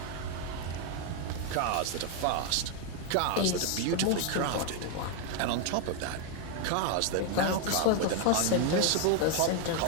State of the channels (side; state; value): both; different; correlation 0.01